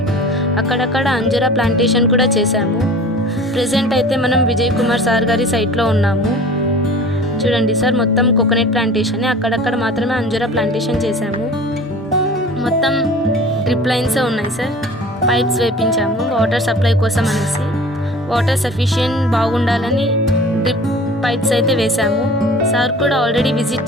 అక్కడక్కడ అంజూరా ప్లాంటేషన్ కూడా చేశాము. ప్రెజెంట్ అయితే మనం విజయ్ కుమార్ సార్ గారి సైట్లో ఉన్నాము. చూడండి సార్, మొత్తం కోకోనట్ ప్లాంటేషన్, అక్కడక్కడ మాత్రమే అంజూరా ప్లాంటేషన్ చేశాము. మొత్తం డ్రిప్ లైన్స్ ఉన్నాయి సార్. పైప్స్ వేపించాము వాటర్ సప్లై కోసం అనేసి. వాటర్ సఫిషియెంట్ బాగుండాలని డ్రిప్ పైప్స్ అయితే వేశాము. సార్ కూడా ఆల్రెడీ విజిట్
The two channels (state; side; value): normal; both; correlation 0.43